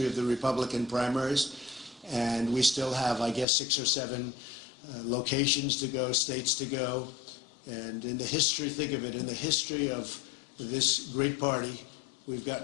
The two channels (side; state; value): right; drops out; at 3.5 s